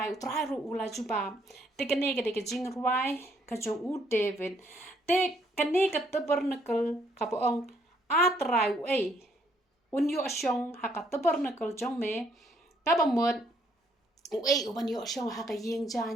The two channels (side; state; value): both; normal; correlation 0.69